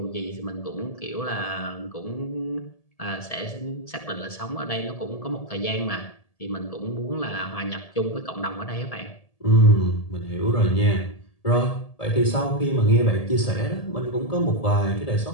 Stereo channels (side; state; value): right; late; 1.7 ms